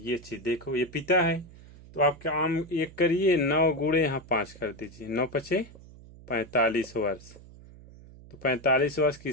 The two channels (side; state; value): right; noise; hum, 20 dB below the sound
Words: चीज देखो, ये पिता है। तो आप क्या आम एक करिए, 9 गुणे यहाँ 5 कर दीजिए, 9 पचे 45 वर्ष। तो 45 वर्ष